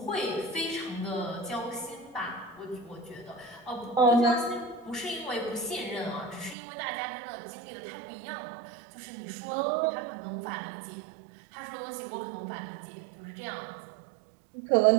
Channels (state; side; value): drops out; left; at 6.6 s